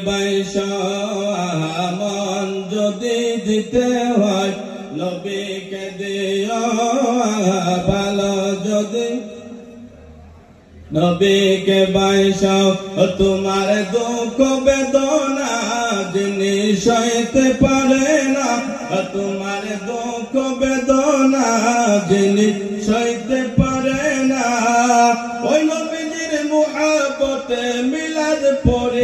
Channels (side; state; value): both; identical; correlation 1.00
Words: বাইশা মন যদি দিতে হয় নবীকে দিও ভালো, যদি নবীকে বাইশাও তোমার দুঃখ বেদনা যিনি সইতে পারে না, তোমার দুঃখ বেদনা যিনি সইতে পারে না, ওই নবীজির মুহাব্বতে মিলাদ